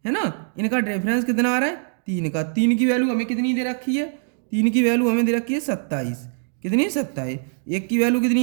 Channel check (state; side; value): silent; left; digital silence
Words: है ना। इनका डिफरेंस कितना आ रहा है, 3 का, 3 की वैल्यू हमें कितनी दे रखी है, 3 की वैल्यू हमें दे रखी है 27, कितनी 27, 1 की वैल्यू